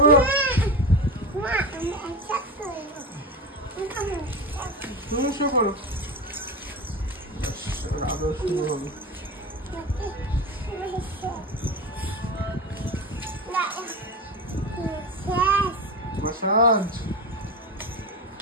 তুমি শুয়ে পড়ো, আদর শুরু হবে। মাসাজ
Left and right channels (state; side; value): normal; both; correlation 0.23